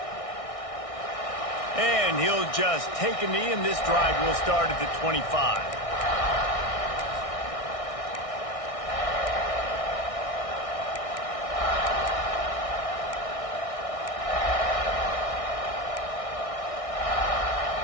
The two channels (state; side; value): late; right; 1.6 ms